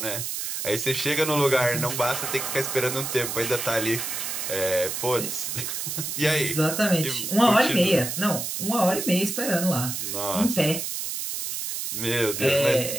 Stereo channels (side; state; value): right; noise; hiss, 4 dB below the sound